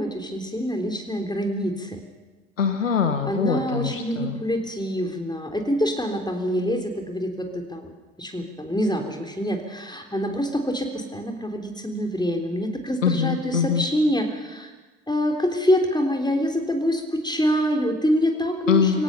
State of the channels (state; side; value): normal; both; correlation 0.55